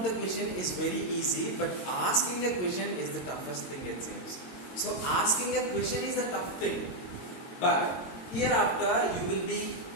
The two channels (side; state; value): right; late; 22 ms